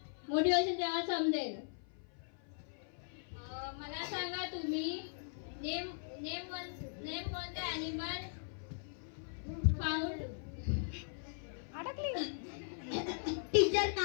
मोठी होशील तेव्हा समजेल. मला सांगा तुम्ही name one the animal found. Teacher,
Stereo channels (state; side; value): silent; right; 52 dB below the other